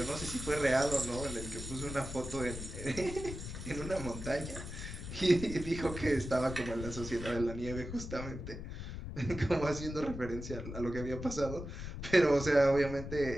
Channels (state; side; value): noise; left; rumble, 8 dB below the sound